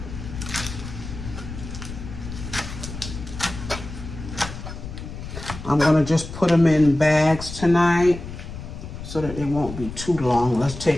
I'm going to just put them in bags tonight so that they won't be too long. Let's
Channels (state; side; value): noise; left; rumble, 10 dB below the sound